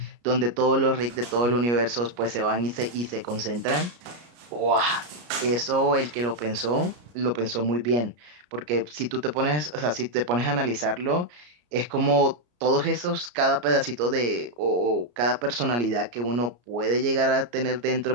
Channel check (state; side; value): late; left; 33 ms